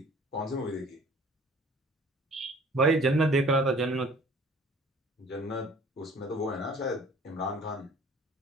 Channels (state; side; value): normal; both; correlation 0.51